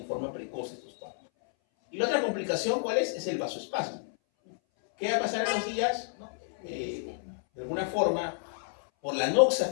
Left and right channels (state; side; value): silent; right; 58 dB below the other